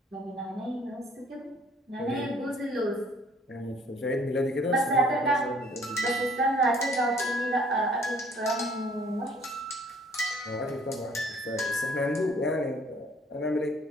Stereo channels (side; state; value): both; normal; correlation 0.58